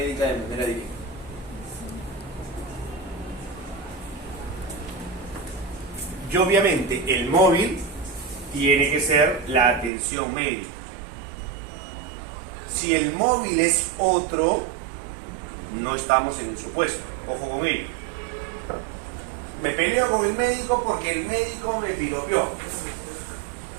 de manera directa. Y obviamente el móvil tiene que ser la atención médica. Si el móvil es otro, no estamos en el supuesto. Ojo con ello. Me peleo con el médico porque el médico me piropeó.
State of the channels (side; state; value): left; drops out; at 9.9 s